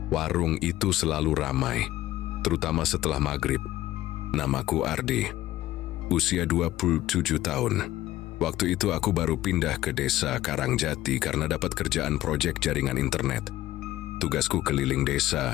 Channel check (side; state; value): right; quieter; 15.0 dB